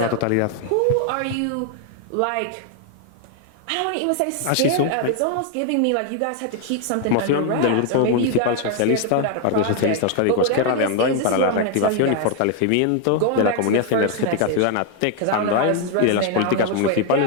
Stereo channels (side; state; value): both; different; correlation 0.00